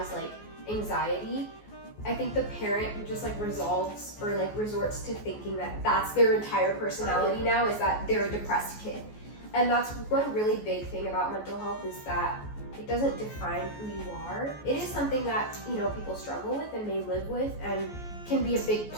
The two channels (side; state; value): right; late; 14 ms